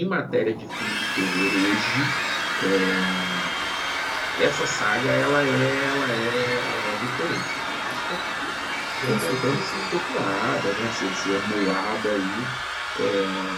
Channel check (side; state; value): both; identical; correlation 1.00